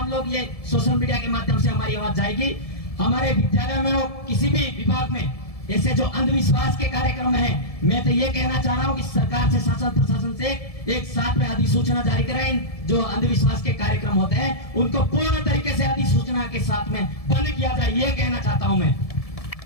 लोग ये सोशल मीडिया के माध्यम से हमारी आवाज जाएगी। हमारे विद्यालय में हो, किसी भी विभाग में ऐसे जो अंधविश्वास के कार्यक्रम हैं, मैं तो ये कहना चाह रहा हूँ कि सरकार से, शासन प्रशासन से एक साथ में अधिसूचना जारी करें। जो अंधविश्वास के कार्यक्रम होते हैं उनको पूर्ण तरीके से अधिसूचना के साथ में बंद किया जाए, ये कहना चाहता हूं मैं।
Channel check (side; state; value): right; late; 1.7 ms